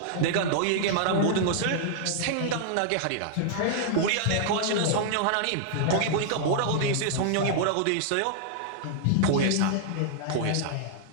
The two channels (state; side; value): different; both; correlation -0.01